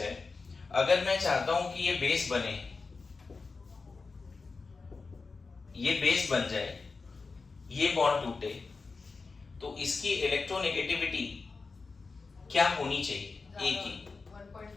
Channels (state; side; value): quieter; right; 4.3 dB